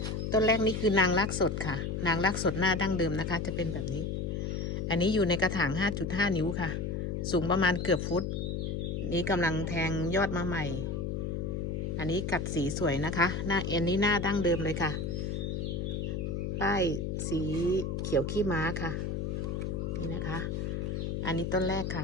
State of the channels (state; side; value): noise; left; hum, 2 dB below the sound